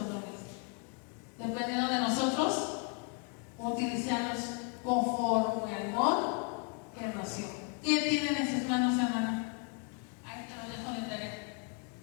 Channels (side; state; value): right; quieter; 36.4 dB